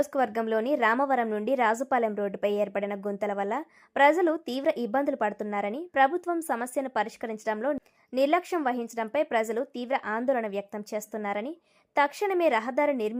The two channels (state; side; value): identical; both; correlation 1.00